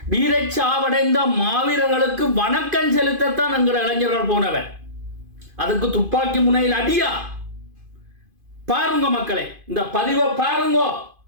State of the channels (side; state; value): left; late; 2.5 ms